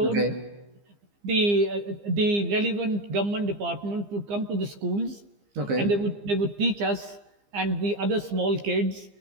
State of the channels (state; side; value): late; left; 15 ms